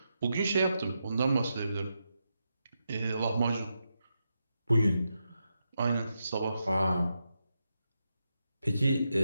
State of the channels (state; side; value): inverted; both; correlation -0.86